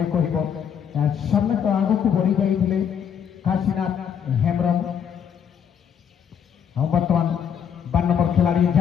কহব। সামনে তো আগুক বড়ি যাই কাশীনাথ হেমব্রম। বর্তমান 12 নম্বর খেলাড়ি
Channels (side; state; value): right; quieter; 8.0 dB